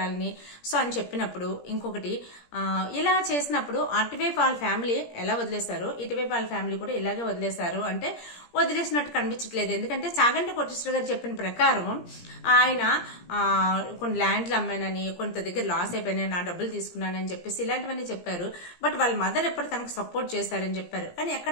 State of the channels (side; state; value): right; late; 17 ms